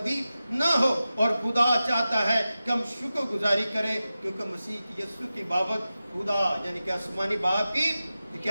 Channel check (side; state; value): both; inverted; correlation -0.93